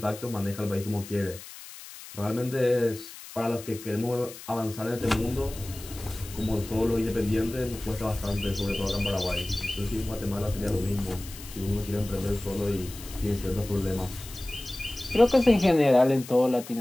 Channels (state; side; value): noise; left; hiss, 15 dB below the sound